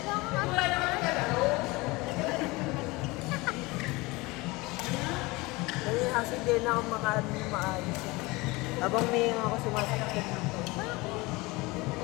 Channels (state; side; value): quieter; right; 23.1 dB